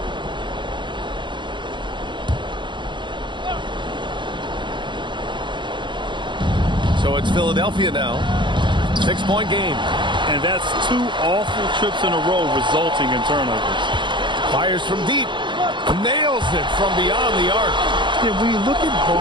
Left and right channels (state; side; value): late; left; 0.23 ms